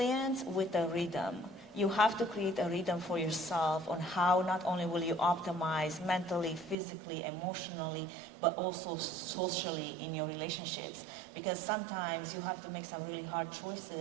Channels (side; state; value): left; drops out; at 6.8 s